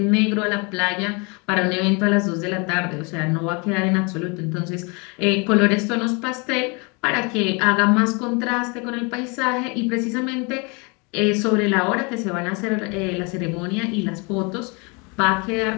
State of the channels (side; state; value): right; quieter; 30.8 dB